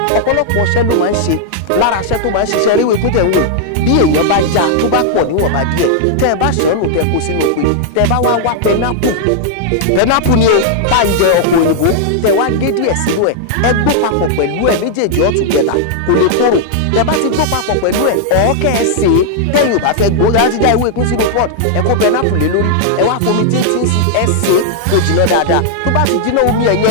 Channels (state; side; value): different; both; correlation -0.01